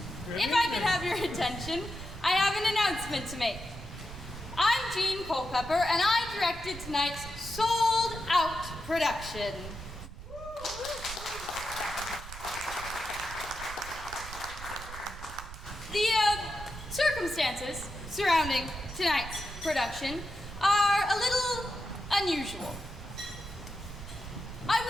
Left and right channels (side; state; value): right; noise; rumble, 12 dB below the sound